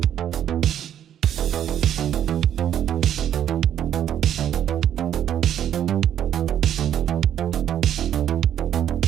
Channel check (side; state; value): left; quieter; 10.2 dB